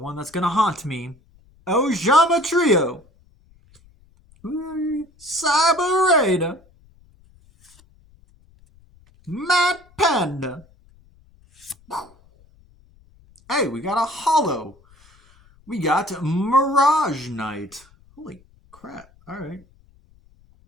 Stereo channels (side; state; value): left; noise; rumble, 29 dB below the sound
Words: that's going to haunt me. Ojama Trio. Cyber Raider. Mad Panda. Hey, we got a hollow. We got Mirage Knight. Holy crap. Alright.